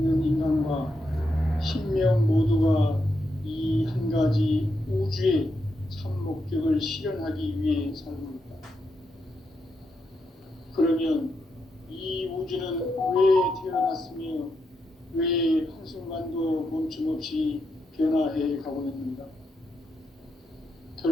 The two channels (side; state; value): both; normal; correlation 0.83